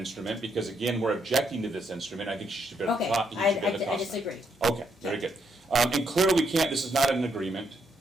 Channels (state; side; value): normal; both; correlation 0.76